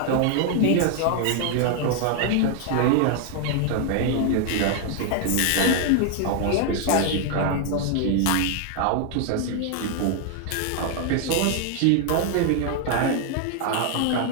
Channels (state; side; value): different; both; correlation 0.00